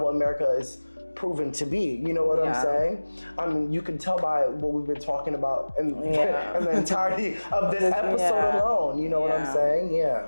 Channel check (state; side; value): inverted; both; correlation -1.00